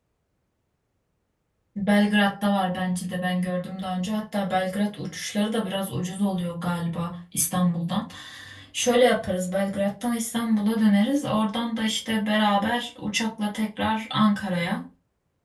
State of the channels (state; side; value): identical; both; correlation 1.00